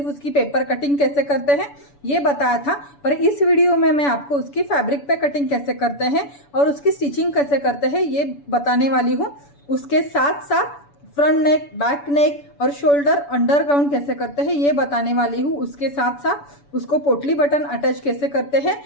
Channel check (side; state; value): right; late; 7.0 ms